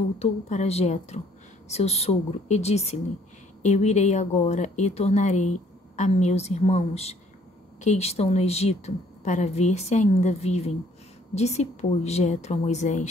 para Jetro, seu sogro, e disse-lhe: Eu irei agora e tornarei a meus irmãos que estão no Egito, para ver se ainda vivem. Disse, pois, Jetro a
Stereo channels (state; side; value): normal; both; correlation 0.61